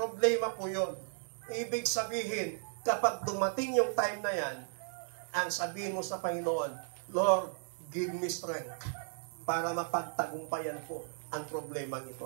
po yun. Ibig sabihin, kapag dumating yung time na yan, ang sabihin mo sa Panginoon, Lord, give me strength para mapagtagumpayan ko ang problema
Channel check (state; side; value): silent; left; digital silence